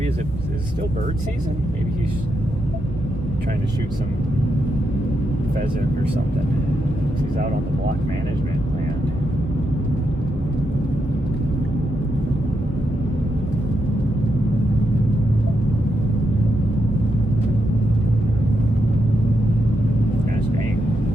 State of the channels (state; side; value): normal; both; correlation 0.83